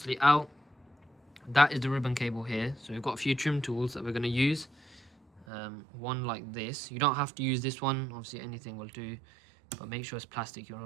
out. That is the ribbon cable here. So we've got a few trim tools that we're going to use. One like this. You don't have to use this one. Obviously anything will do. But make sure it's plastic.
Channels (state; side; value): drops out; left; at 5.5 s